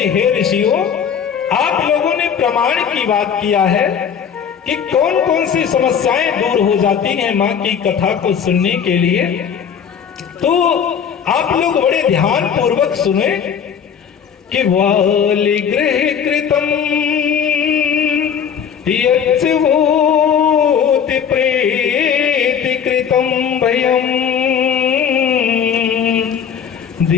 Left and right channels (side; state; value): right; quieter; 7.7 dB